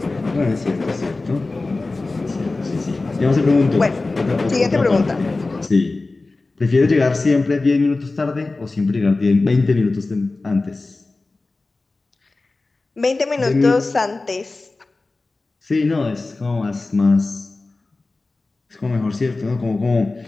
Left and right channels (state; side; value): quieter; right; 3.4 dB